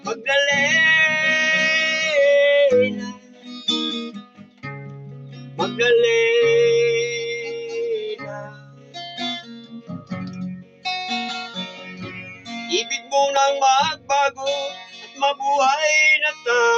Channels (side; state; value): both; identical; correlation 1.00